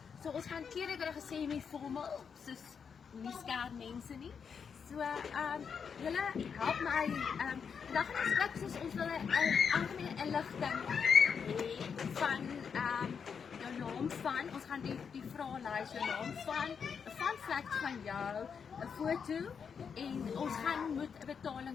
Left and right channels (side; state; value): right; quieter; 6.5 dB